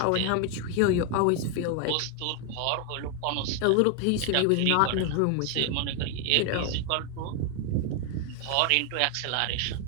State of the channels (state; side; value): different; both; correlation 0.01